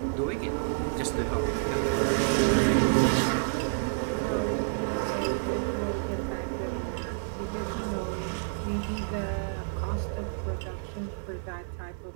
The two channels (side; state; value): left; silent; 58 dB below the other